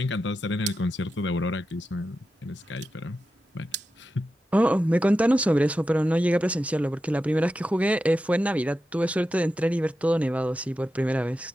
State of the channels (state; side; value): normal; both; correlation 0.90